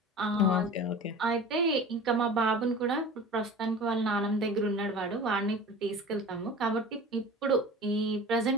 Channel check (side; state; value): both; normal; correlation 0.38